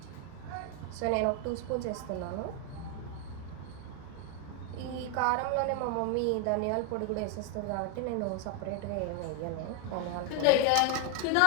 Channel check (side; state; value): both; different; correlation 0.01